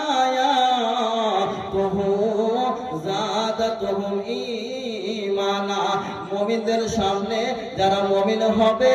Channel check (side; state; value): both; identical; correlation 1.00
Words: আয়াতুহু জাদাতুহুম ঈমানা। মুমিনদের সামনে, যারা মুমিন হবে